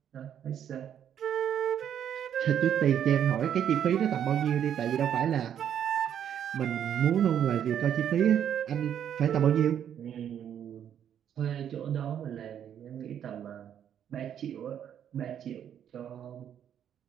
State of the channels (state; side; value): quieter; left; 9.4 dB